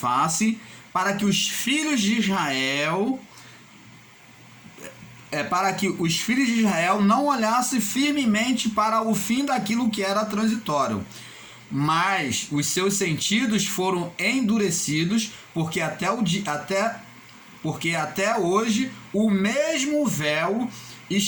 para que os filhos de Israel não olhassem firmemente para o fim daquilo que era transitório. Mas os seus sentidos foram endurecidos, porque até hoje o mesmo véu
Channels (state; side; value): identical; both; correlation 1.00